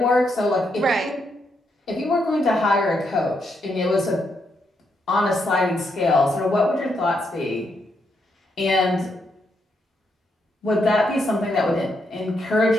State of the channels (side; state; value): both; normal; correlation 0.79